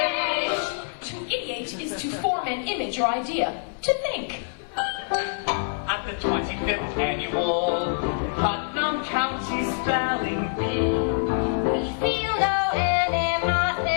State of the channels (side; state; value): right; silent; 56 dB below the other